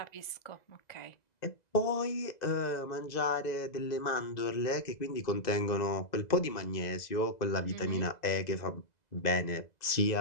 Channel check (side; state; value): right; late; 2.0 ms